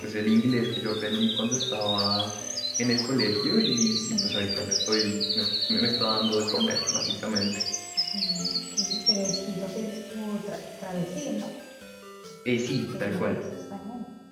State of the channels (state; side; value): identical; both; correlation 1.00